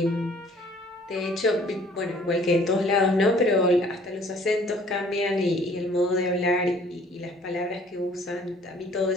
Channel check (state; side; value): normal; both; correlation 0.56